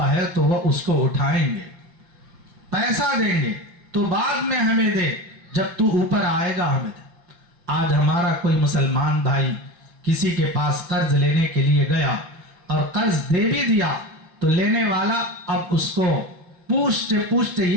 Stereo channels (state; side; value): late; left; 5.8 ms